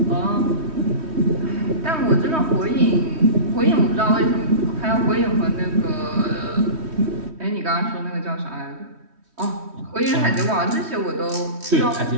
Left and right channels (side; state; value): left; late; 3.1 ms